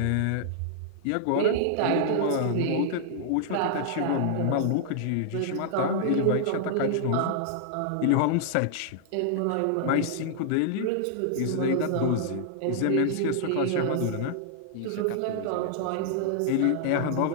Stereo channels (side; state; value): both; different; correlation -0.01